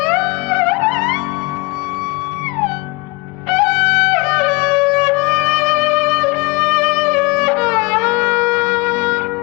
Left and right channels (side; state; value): right; quieter; 26.2 dB